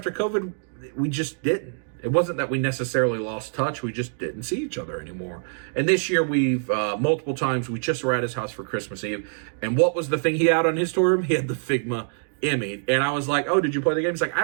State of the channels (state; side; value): silent; left; digital silence